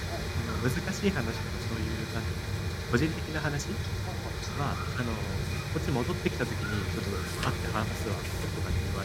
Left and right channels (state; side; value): identical; both; correlation 1.00